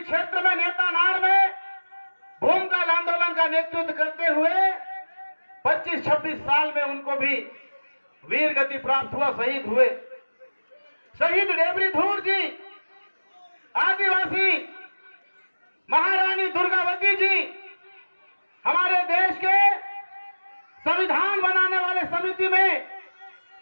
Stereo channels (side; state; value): both; inverted; correlation -1.00